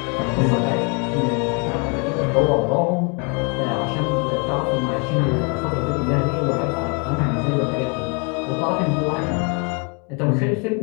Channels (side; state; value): right; quieter; 33.6 dB